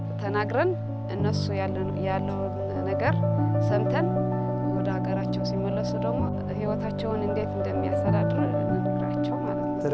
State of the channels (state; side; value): identical; both; correlation 1.00